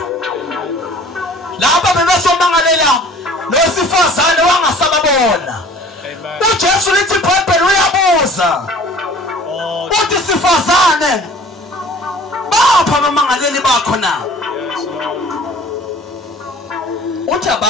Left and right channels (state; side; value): normal; both; correlation 0.48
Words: Laba bebesomangalela losifazane wangasababona. uJesu lithi iBhayibheli uyabuza. Uthi sifazane bapha abamangaleli bakho na? Uthi